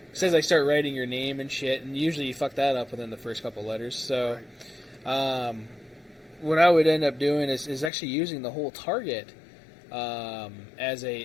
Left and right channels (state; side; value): drops out; right; at 7.9 s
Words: I start writing your name and shit, and usually you fuck that up within the first couple letters. So, what I would end up doing is actually using the whole target as